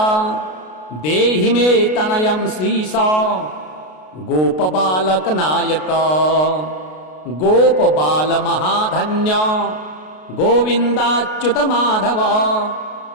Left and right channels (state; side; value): late; right; 33 ms